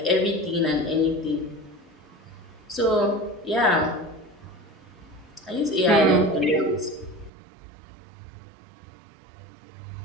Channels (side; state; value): left; drops out; at 7.3 s